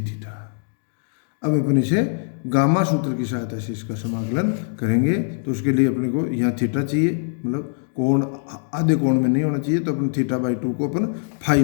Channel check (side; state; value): right; silent; digital silence